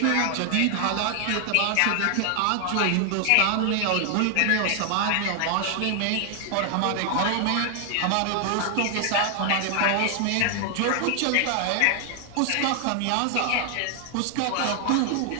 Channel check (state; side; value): different; both; correlation 0.00